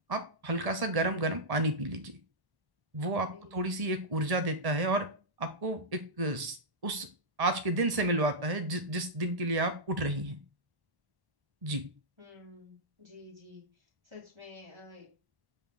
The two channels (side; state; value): left; late; 1.1 ms